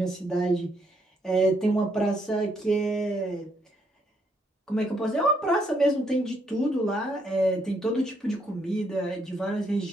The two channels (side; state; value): both; normal; correlation 0.73